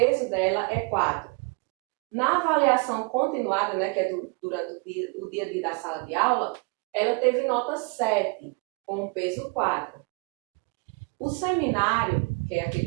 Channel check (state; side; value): quieter; left; 31.5 dB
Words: dela é 4. Na avaliação continuada, né, que é durante o dia a dia da sala de aula, ela teve nota 7, com o peso 4. O seminário, que é aquele